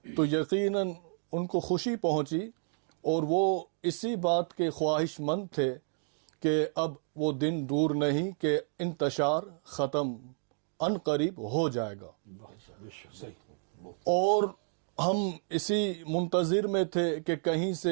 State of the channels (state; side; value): silent; left; 57 dB below the other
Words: تو یقیناً ان کو خوشی پہنچی اور وہ اسی بات کے خواہش مند تھے کہ اب وہ دن دور نہیں کہ انتشار ختم ان قریب ہو جائے گا. اور ہم اسی منتظر میں تھے کہ کہیں